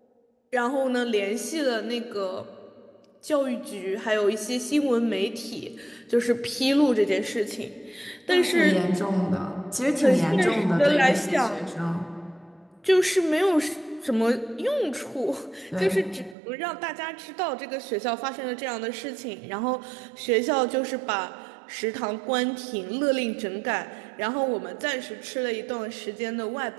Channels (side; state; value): left; drops out; at 16.4 s